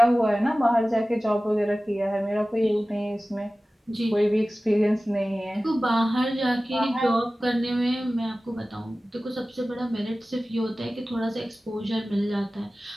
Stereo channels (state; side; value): normal; both; correlation 0.97